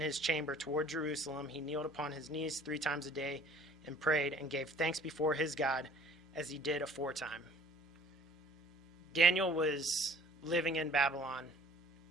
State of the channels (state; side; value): normal; both; correlation 0.53